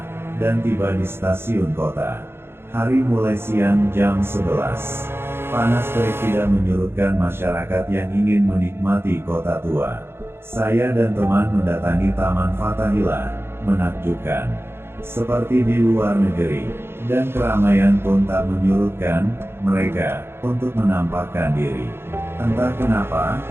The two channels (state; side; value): late; left; 0.11 ms